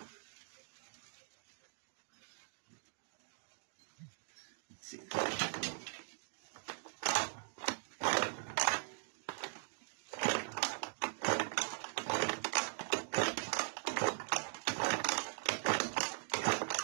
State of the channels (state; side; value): silent; left; digital silence